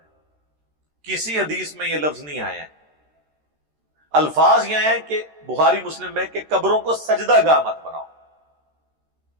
کسی حدیث میں یہ لفظ نہیں آیا ہے۔ الفاظ یہ ہیں کہ بخاری مسلم میں کہ قبروں کو سجدہ گاہ مت بناؤ۔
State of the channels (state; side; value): late; left; 13 ms